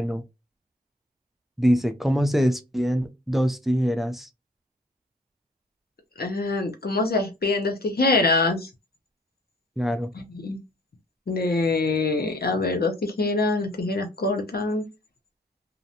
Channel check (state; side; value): normal; both; correlation 0.58